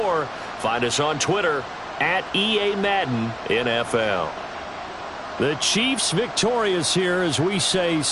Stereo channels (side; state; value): both; identical; correlation 1.00